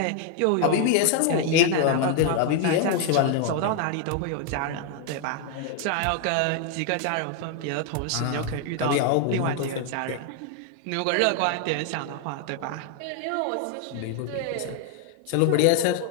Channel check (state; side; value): different; both; correlation 0.00